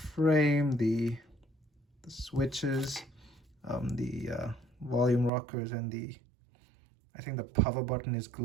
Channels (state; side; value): drops out; left; at 5.3 s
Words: The switches, the volume rockers, and I think the power button is